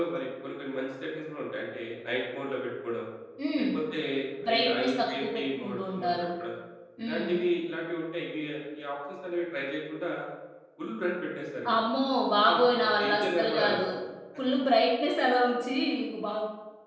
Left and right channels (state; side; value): identical; both; correlation 1.00